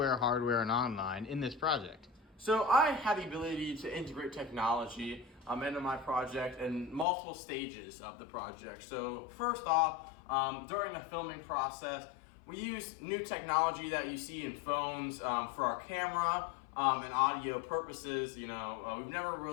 hardware, and online in this project? So I had the ability to integrate technology into my project in multiple stages of the project. So first off, during the filming process, we used new technology that you see in phones for our camera and audio purposes. You know, we've never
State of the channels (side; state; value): right; drops out; at 7.1 s